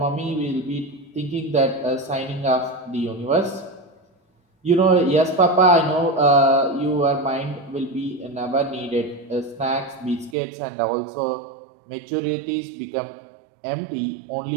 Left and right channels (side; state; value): left; drops out; at 10.4 s